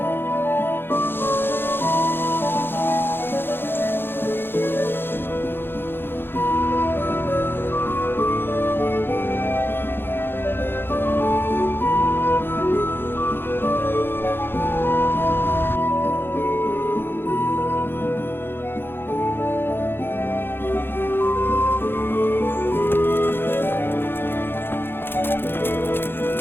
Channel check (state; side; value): late; right; 0.10 ms